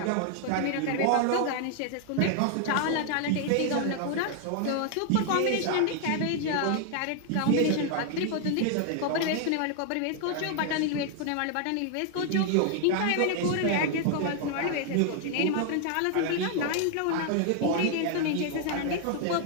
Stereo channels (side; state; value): both; different; correlation 0.00